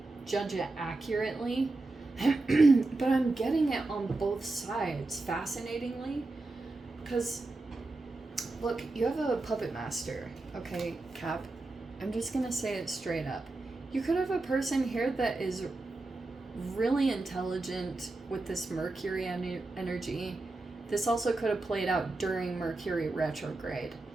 judge it accurately. But I'm getting it on both sides, fascinatingly, because look, you have a puppet master, okay, Cap? I'm just gonna say it straight up. You could have a person here that is really intelligent with this Mercury energy. This also could have played out during Mercury retrograde.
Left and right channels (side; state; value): left; quieter; 3.1 dB